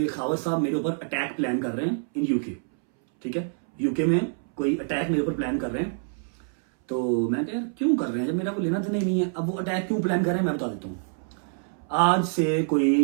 खावर साहब मेरे ऊपर अटैक प्लान कर रहे हैं इन यूके, ठीक है, यूके में कोई अटैक मेरे ऊपर प्लान कर रहे हैं। तो मैं कह यार क्यों कर रहे हैं जब मेरा कोई लेना देना ही नहीं है। अब वो अटैक क्यों प्लान कर रहे हैं मैं बता देता हूँ। आज से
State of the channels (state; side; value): silent; left; 61 dB below the other